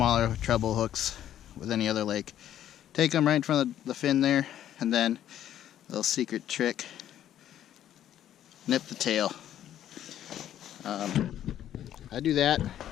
treble hooks with any other lake. Take them right in front of the fin there, and then a little secret trick, nip the tail. I do that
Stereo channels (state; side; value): quieter; right; 11.3 dB